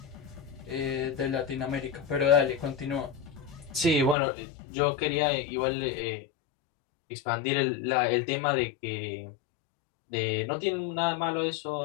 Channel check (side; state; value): right; drops out; at 4.2 s